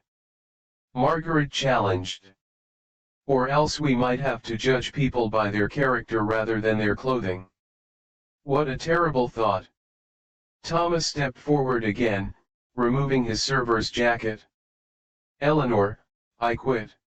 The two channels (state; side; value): identical; both; correlation 1.00